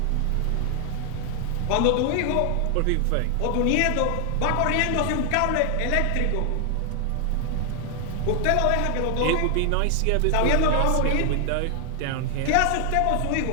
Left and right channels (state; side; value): different; both; correlation 0.00